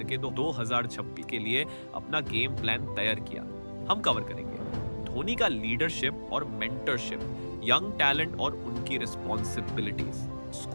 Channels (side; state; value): both; inverted; correlation -1.00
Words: 2026 के लिए अपना गेम प्लान तैयार किया। हम कवर करेंगे धोनी का लीडरशिप और मेंटरशिप, यंग टैलेंट और उनकी रिस्पॉन्सिबिलिटीज,